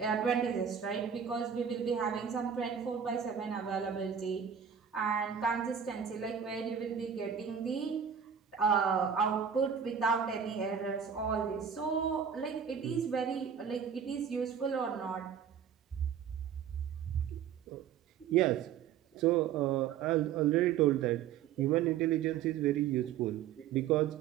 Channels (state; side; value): quieter; left; 7.9 dB